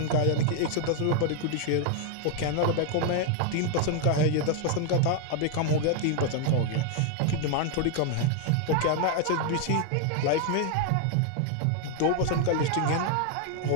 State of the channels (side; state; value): both; different; correlation 0.00